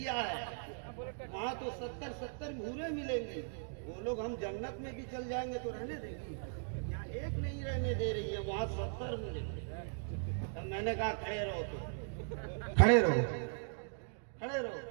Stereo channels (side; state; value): left; silent; digital silence